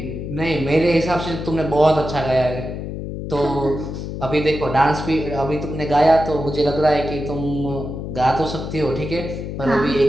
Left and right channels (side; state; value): left; noise; hum, 6 dB below the sound